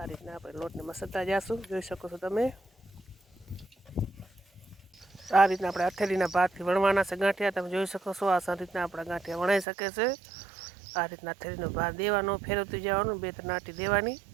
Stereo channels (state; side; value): drops out; left; at 9.7 s